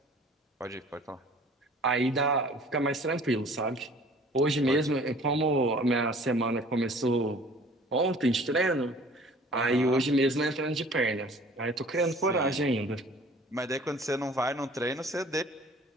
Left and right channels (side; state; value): both; normal; correlation 0.49